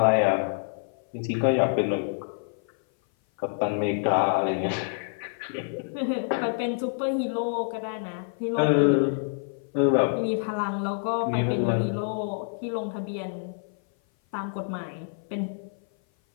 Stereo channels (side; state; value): right; silent; 57 dB below the other